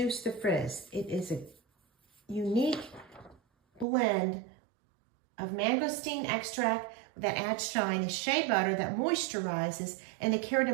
the frizz. It is a unique blend of mangosteen extract that adds shine, the shea butter that moisturizes, and the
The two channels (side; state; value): left; drops out; at 3.9 s